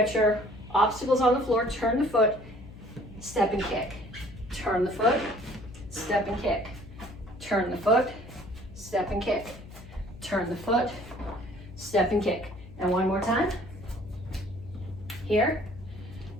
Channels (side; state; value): left; noise; hum, 16 dB below the sound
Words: your obstacles on the floor. Turn the foot, step and kick. Turn the foot, step and kick. Turn the foot, step and kick. Turn the foot, step and kick. And one more time. Here,